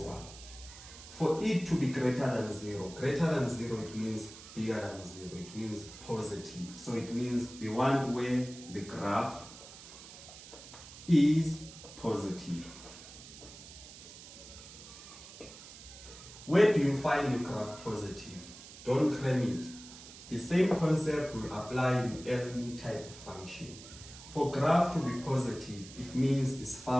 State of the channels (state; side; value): noise; right; hiss, 16 dB below the sound